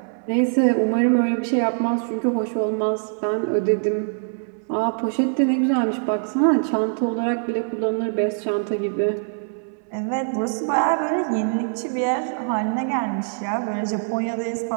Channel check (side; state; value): left; silent; 61 dB below the other